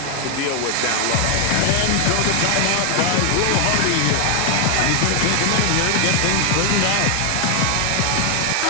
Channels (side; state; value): both; different; correlation 0.00